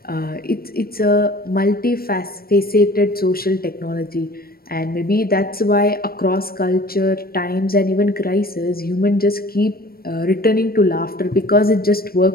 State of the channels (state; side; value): late; right; 0.44 ms